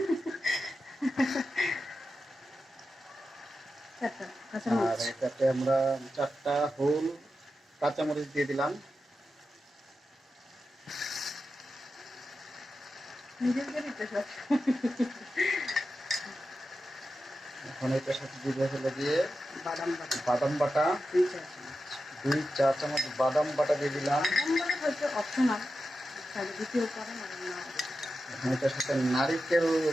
চারটা আর কাঁচামরিচ, এটাতে আমরা 4টা হোল কাঁচামরিচ দিয়ে দিলাম। নিজের বাড়িতে সব এখন এটার সাথে দিয়ে হলো দিয়ে বাদাম বাটা বাদাম বাটা, 2 চা চামচ, 2 চা চামচ বাদাম বাটা দিয়ে দিলাম। বাদাম বাটা হচ্ছে অপশনাল, তাহলে দ্বিতীয় পারেন আর না, এখন এটার সাথে নারিকেল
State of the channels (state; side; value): normal; both; correlation 0.90